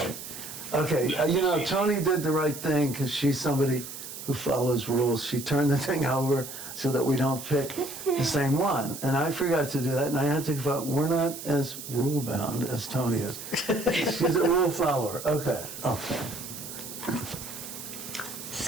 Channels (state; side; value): noise; right; hiss, 10 dB below the sound